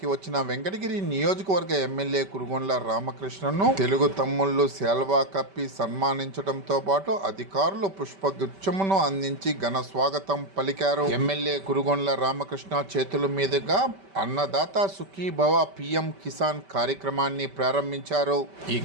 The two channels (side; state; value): left; late; 5.1 ms